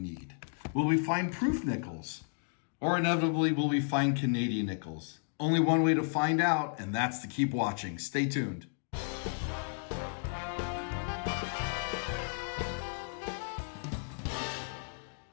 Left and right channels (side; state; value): right; silent; digital silence